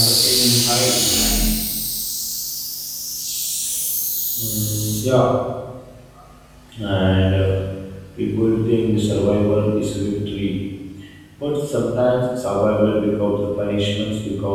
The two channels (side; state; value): both; identical; correlation 1.00